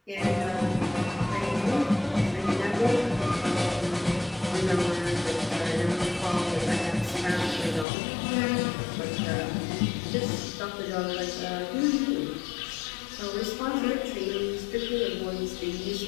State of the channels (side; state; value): right; drops out; at 7.9 s